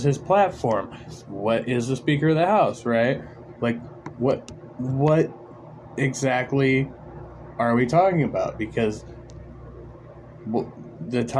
his platform. What is the Speaker of the House, right? Like, what exactly are we talking about? Because the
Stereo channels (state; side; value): identical; both; correlation 1.00